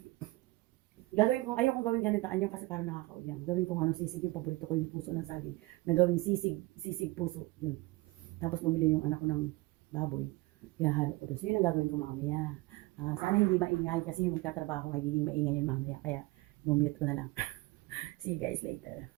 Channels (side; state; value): left; quieter; 21.7 dB